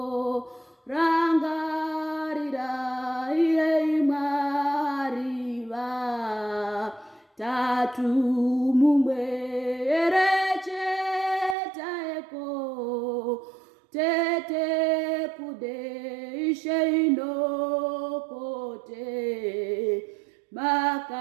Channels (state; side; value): drops out; left; at 11.6 s